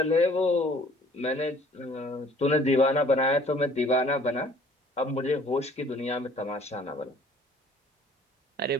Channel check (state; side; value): normal; both; correlation 0.54